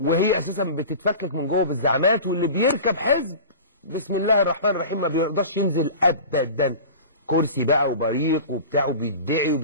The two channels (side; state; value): both; inverted; correlation -0.35